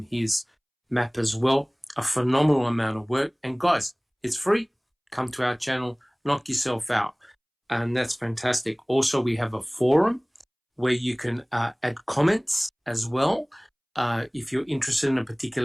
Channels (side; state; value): both; identical; correlation 1.00